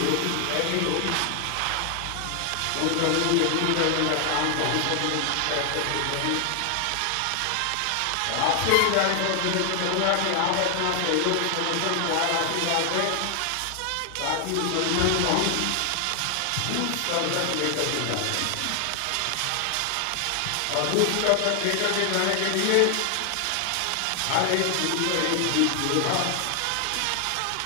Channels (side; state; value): both; different; correlation 0.00